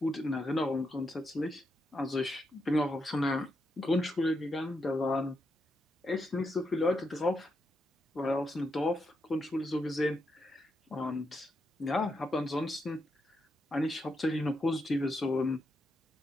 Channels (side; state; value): both; normal; correlation 0.83